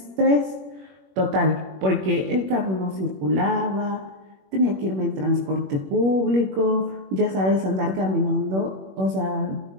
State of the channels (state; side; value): late; left; 21 ms